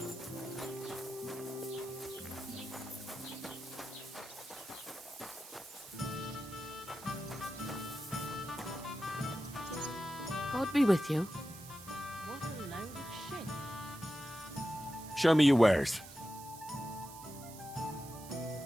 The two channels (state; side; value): noise; right; hiss, 15 dB below the sound